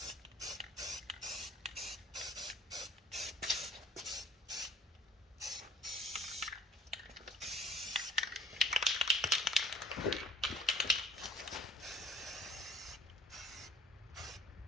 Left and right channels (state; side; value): normal; both; correlation 0.51